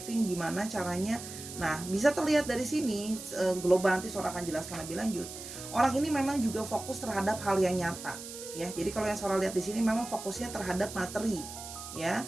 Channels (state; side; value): noise; right; hiss, 11 dB below the sound